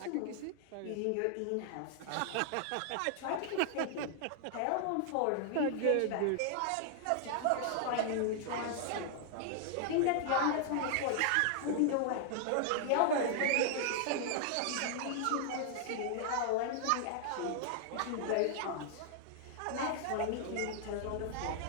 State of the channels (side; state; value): both; different; correlation -0.01